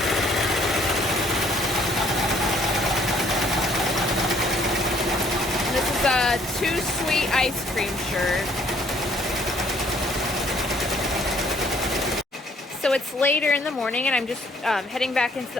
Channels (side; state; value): both; normal; correlation 0.63